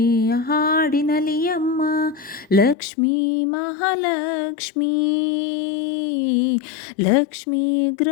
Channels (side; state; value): right; drops out; at 2.8 s